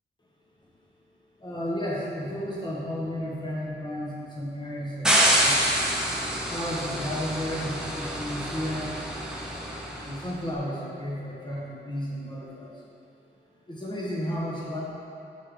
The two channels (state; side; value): normal; both; correlation 0.37